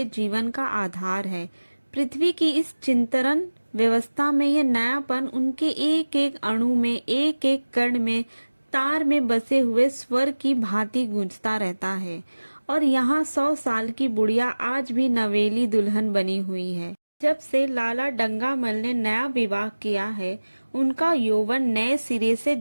जीवन का आधार है। पृथ्वी की इस चिंतन व्यवस्था में यह नयापन उनके एक एक अणु में, एक एक कण में, तार में बसे हुए स्वर की भांति गूंजता रहता है। और यहाँ 100 साल की बुढ़िया आज भी नवेली दुल्हन बनी हुई है। जब से लाला डंगामल ने नया विवाह किया है, उनका यौवन नए सिरे से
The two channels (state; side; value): inverted; both; correlation -1.00